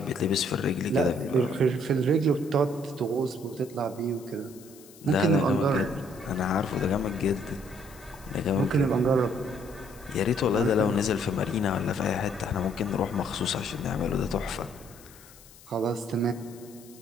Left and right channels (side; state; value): left; noise; hiss, 22 dB below the sound